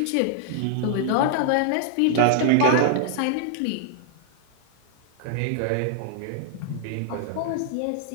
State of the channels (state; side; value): different; both; correlation -0.01